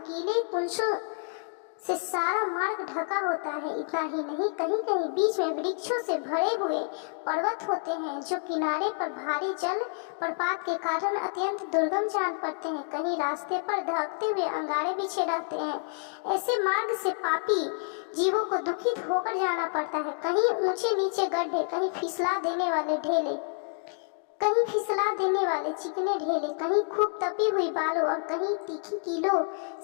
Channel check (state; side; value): silent; right; 57 dB below the other